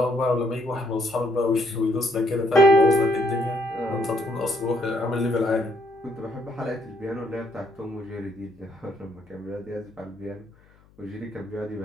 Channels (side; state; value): left; noise; hum, 29 dB below the sound